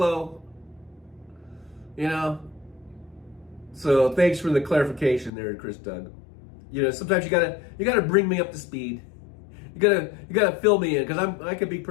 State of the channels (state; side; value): drops out; right; at 5.3 s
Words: You know? So thanks for the clarification there, Chris Doug. You know, sometimes you gotta bring me up to speed. You gotta fill me in, because I could be